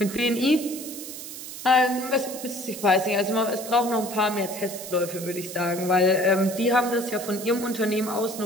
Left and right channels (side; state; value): right; noise; hiss, 10 dB below the sound